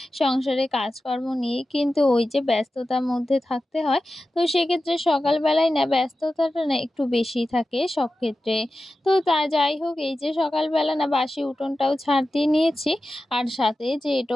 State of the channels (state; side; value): normal; both; correlation 0.93